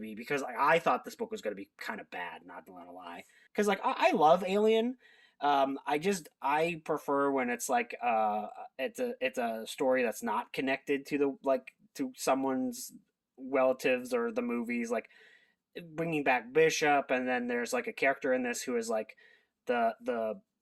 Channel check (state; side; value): identical; both; correlation 1.00